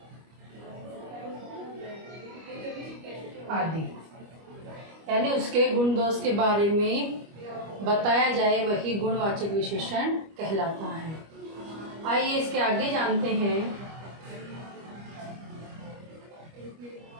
आदि। यानी उसके गुण दोष के बारे में बताया जाए वही गुणवाचक विशेषण कहलाता है। आइए इसके आगे जानते हैं।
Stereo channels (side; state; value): left; late; 25 ms